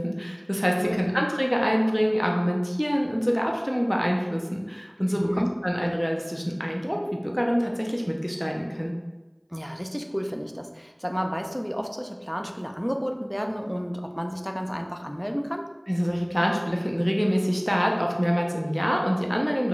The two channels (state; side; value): identical; both; correlation 1.00